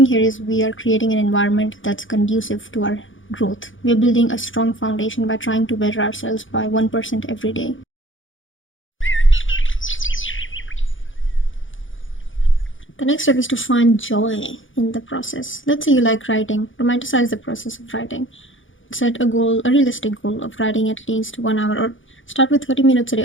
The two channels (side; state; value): right; late; 0.57 ms